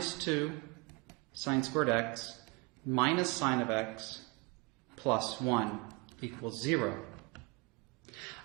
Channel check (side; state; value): left; quieter; 27.6 dB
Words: 2 sine squared x minus sine of x plus 1 equals 0.